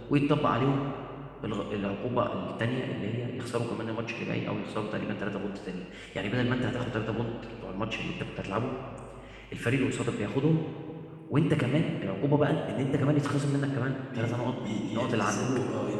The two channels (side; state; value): both; identical; correlation 1.00